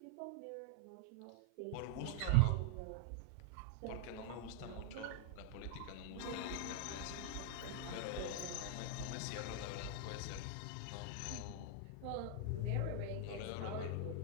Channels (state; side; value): different; both; correlation 0.00